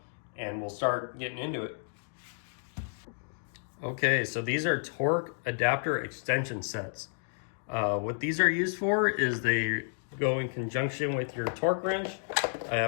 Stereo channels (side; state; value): right; silent; digital silence